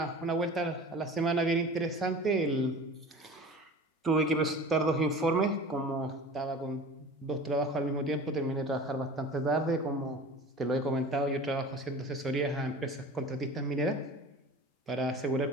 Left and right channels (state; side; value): normal; both; correlation 0.38